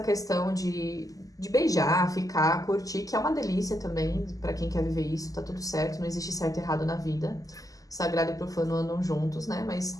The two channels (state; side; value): late; right; 0.17 ms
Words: questão de beijar, ficar, curtir, que é uma delícia também pra quem quer viver isso, tá tudo certo, não existe certo e errado na vida. Sagrado e profano andam juntos, né? Mas